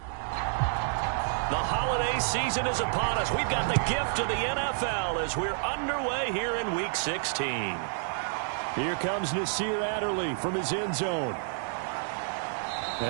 The holiday season is upon us. We've got the gift of the NFL as we're underway here in Week 16. Here comes Nasir Adderley from his end zone.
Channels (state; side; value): silent; left; digital silence